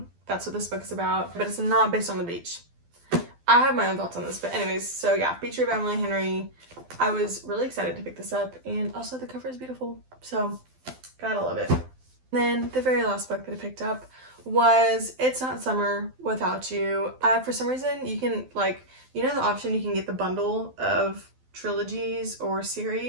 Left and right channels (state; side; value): late; left; 12 ms